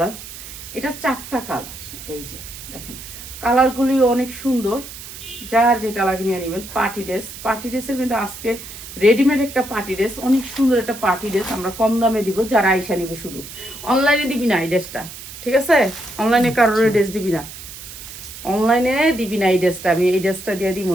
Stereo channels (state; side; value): noise; right; hiss, 13 dB below the sound